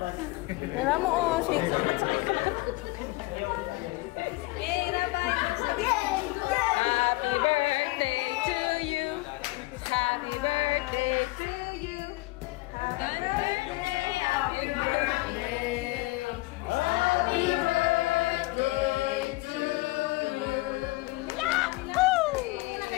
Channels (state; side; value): quieter; right; 21.8 dB